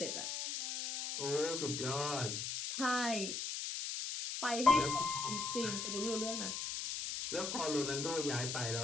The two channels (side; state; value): left; noise; hiss, 3 dB below the sound